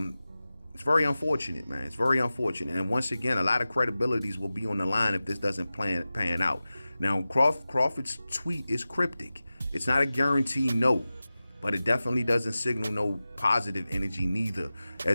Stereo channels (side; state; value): both; inverted; correlation -0.96